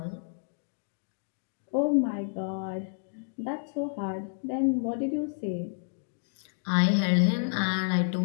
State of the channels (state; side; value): silent; right; digital silence